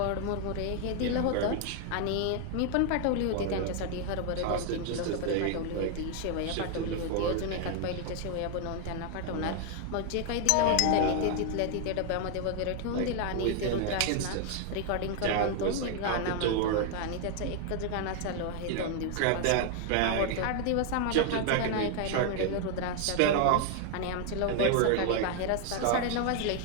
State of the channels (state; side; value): different; both; correlation 0.00